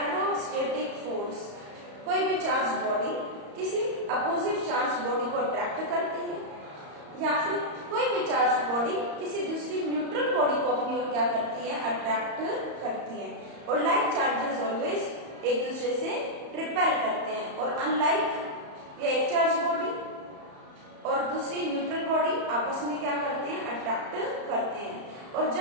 force. कोई भी चार्ज बॉडी किसी अपोजिट चार्ज बॉडी को अट्रैक्ट करती है, या फिर कोई भी चार्ज बॉडी किसी दूसरी न्यूट्रल बॉडी को अपनी ओर क्या करती है? अट्रैक्ट करती है. और लाइक चार्जेस ऑलवेज एक दूसरे से रिपेल करते हैं. और अनलाइक ये एक चार्ज बॉडी और दूसरी न्यूट्रल बॉडी आपस में क्या करते हैं? अट्रैक्ट करते हैं. और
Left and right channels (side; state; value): left; late; 34 ms